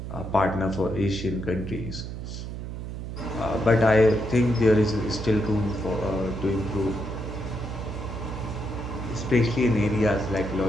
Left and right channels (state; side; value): noise; right; hum, 7 dB below the sound